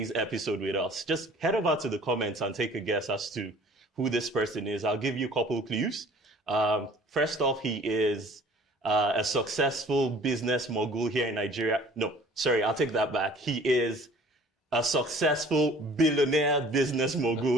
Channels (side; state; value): both; normal; correlation 0.50